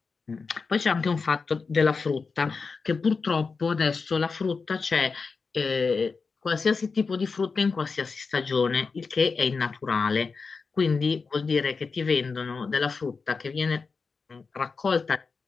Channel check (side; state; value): right; quieter; 4.7 dB